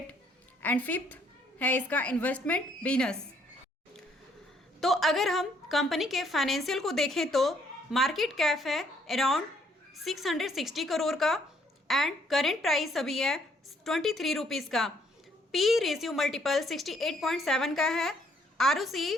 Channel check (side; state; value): both; normal; correlation 0.67